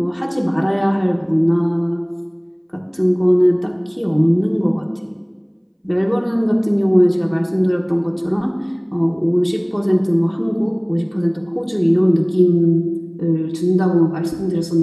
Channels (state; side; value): identical; both; correlation 1.00